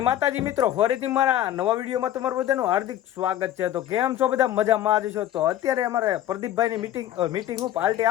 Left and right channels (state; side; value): quieter; right; 12.3 dB